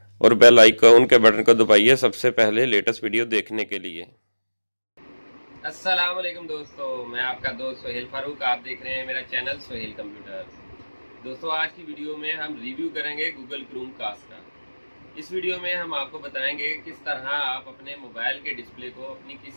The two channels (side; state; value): both; inverted; correlation -1.00